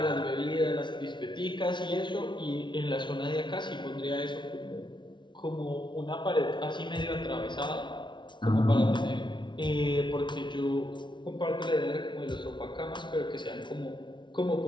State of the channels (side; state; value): right; late; 0.23 ms